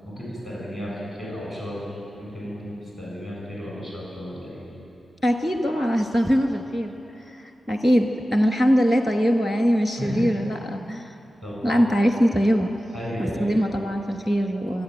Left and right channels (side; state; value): both; normal; correlation 0.95